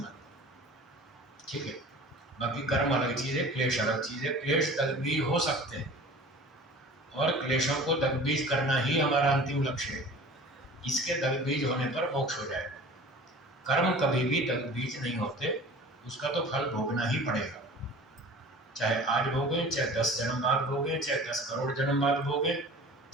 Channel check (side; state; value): both; normal; correlation 0.42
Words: ठीक है। बाकी कर्म अलग चीज है, क्लेश अलग चीज है। क्लेश दग्धबीज हो सकते हैं और क्लेशों को दग्धबीज करना ही हमारा अंतिम लक्ष्य है। इसके दग्धबीज होने पर मोक्ष हो जाएगा। कर्म कभी भी दग्धबीज नहीं होते, उसका तो फल भोगना ही पड़ेगा। चाहे आज भोगे, चाहे 10 जन्म बाद भोगे, चाहे 10 करोड़ जन्म बाद भोगे,